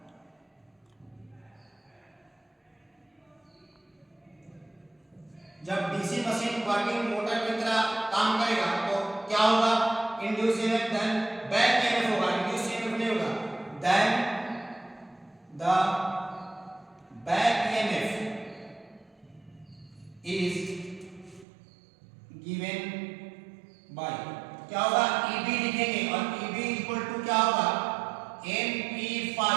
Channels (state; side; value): drops out; left; at 21.5 s